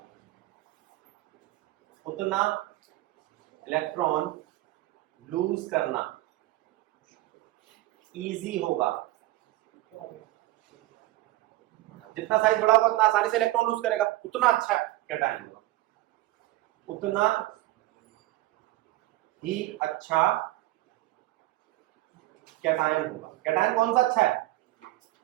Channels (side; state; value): left; quieter; 17.5 dB